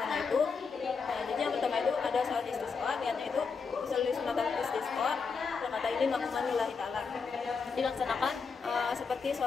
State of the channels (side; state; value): right; quieter; 5.3 dB